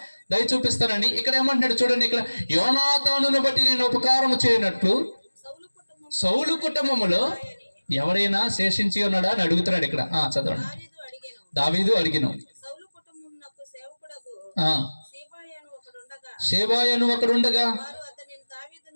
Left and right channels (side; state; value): both; inverted; correlation -1.00